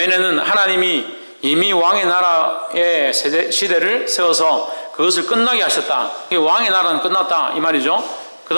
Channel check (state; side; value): inverted; both; correlation -1.00